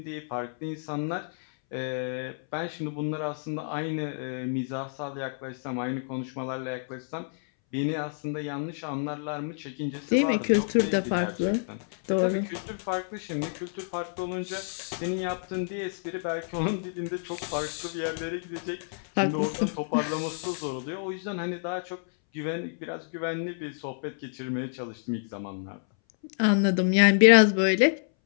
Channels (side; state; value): right; silent; 59 dB below the other